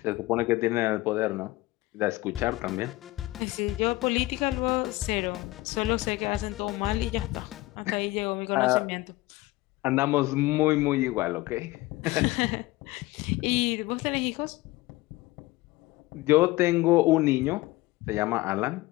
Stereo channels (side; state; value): right; quieter; 19.5 dB